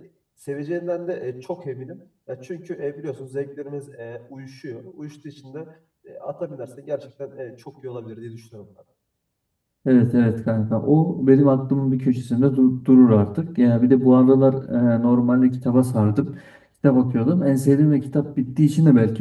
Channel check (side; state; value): both; identical; correlation 1.00